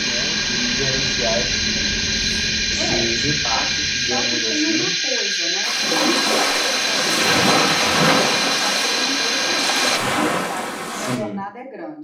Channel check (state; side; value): identical; both; correlation 1.00